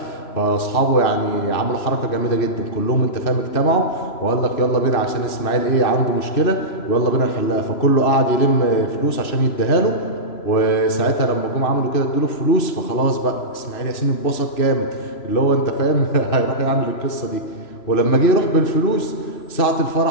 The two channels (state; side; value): late; right; 3.0 ms